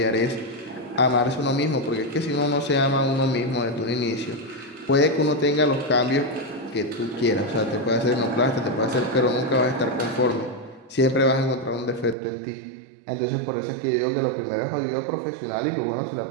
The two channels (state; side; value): drops out; left; at 12.2 s